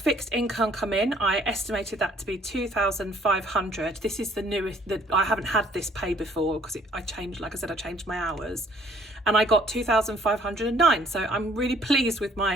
income come in. I estimated that to be 2,500. This is the newest, I haven't had this pay before because I changed, like I said, I changed my hours, and I got 2,509. So I'm really pleased with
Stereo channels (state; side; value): normal; both; correlation 0.60